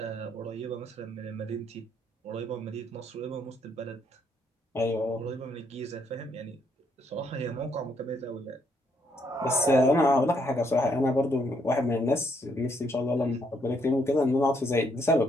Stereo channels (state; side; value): normal; both; correlation 0.72